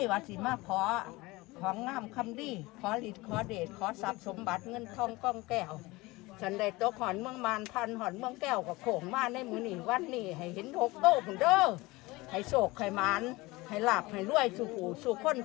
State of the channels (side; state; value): right; quieter; 21.6 dB